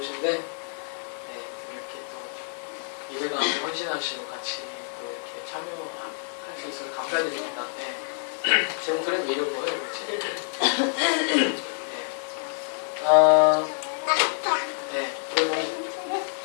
이렇게 또 예배 가운데 헌신하시고 같이 또 이렇게 참여할 수 있어서 감사드립니다. 제 목소리는 왜 이런 거예요? 그리고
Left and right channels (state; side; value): silent; right; digital silence